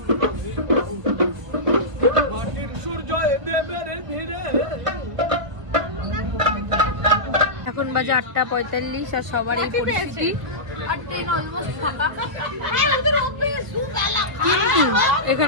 মাটির সূর্য দেবের ভিড়ে। এখন বাজে 8:45 আর সবারই পেয়েছি আর ট্রেন অলমোস্ট ফাঁকা।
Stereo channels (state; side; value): late; left; 1.5 ms